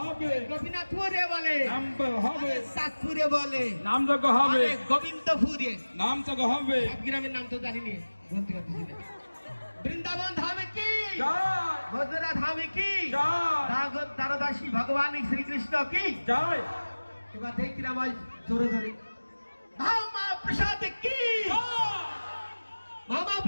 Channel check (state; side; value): inverted; both; correlation -1.00